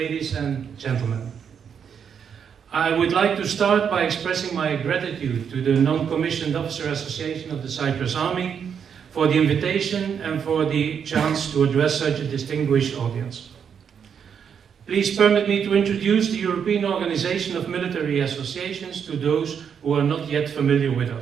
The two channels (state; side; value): quieter; left; 7.4 dB